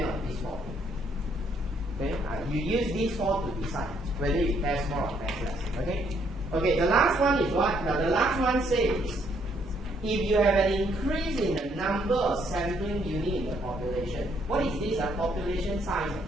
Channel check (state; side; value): normal; both; correlation 0.70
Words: on these four. Okay, you use these four to decide whether you test more or test less. Okay, okay. The last one is what? Now the last one says, if you have an increase in the number of sampling units in the population, what is this? Population size.